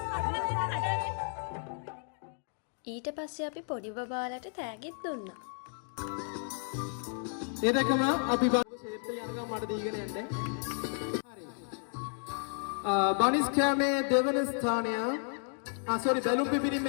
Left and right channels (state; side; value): silent; right; 56 dB below the other